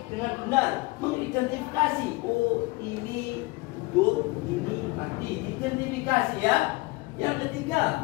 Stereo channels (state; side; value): quieter; right; 23.5 dB